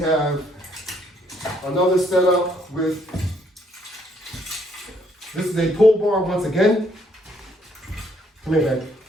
have another setup with, this is a pull bar once again. Come here, baby.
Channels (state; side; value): normal; both; correlation 0.69